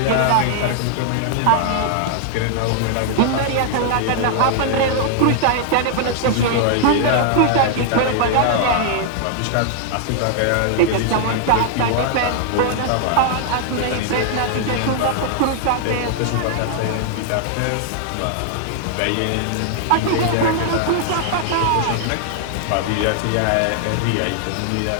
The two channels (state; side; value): different; both; correlation 0.00